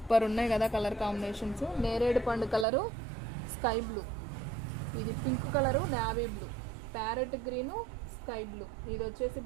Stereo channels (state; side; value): drops out; left; at 2.7 s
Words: ఉన్నాయి కదా కలర్ కాంబినేషన్స్. నేరేడు పండు కలరు, స్కై బ్లూ, ఇది pink colour, navy blue, parrot green, sky blue, ఇది వచ్చేసి